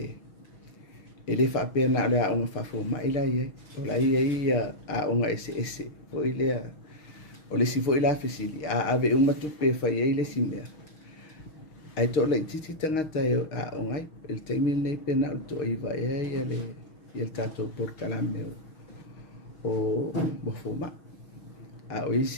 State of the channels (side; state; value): right; late; 6.3 ms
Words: E le whaapea na le aonga whafo mai la iai. O la iai aonga ese. O ile o le si foi la fesili. Ave umatupe whai ei le simea. Ai tō lai titi tangata e o ngai, el teimi nei pena o tō iwa e ia le tātou porkalame o mofoma. O